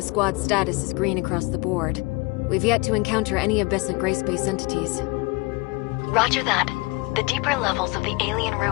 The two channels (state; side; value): quieter; right; 25.0 dB